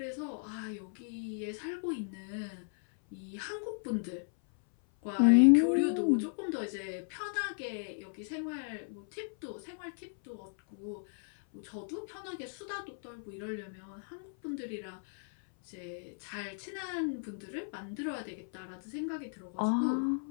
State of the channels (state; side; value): silent; right; 54 dB below the other